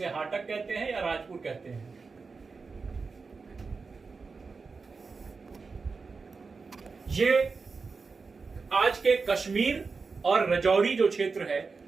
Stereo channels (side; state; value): left; quieter; 4.6 dB